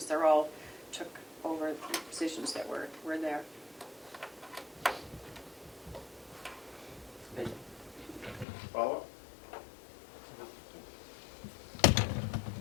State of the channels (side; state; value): right; drops out; at 8.5 s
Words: They're all took over the positions that were there. Follow-up?